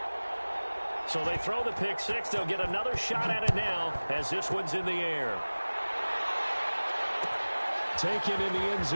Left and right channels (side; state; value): both; inverted; correlation -1.00